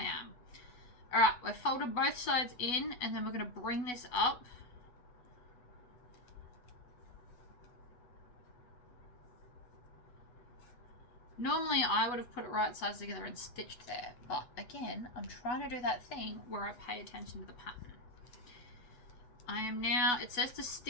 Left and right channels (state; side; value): late; right; 8.1 ms